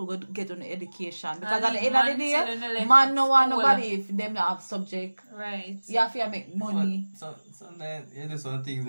go get on education. Because And at the leave end of the man day, children left man at no want school. nobody if them not have subject. Right. You have to make money. But sometimes you do some things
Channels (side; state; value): both; inverted; correlation -1.00